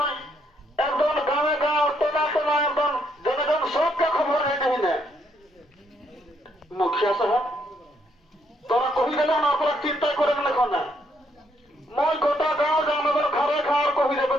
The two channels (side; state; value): both; normal; correlation 0.73